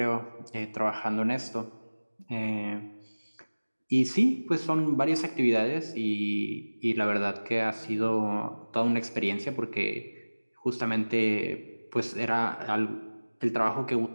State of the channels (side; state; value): both; inverted; correlation -1.00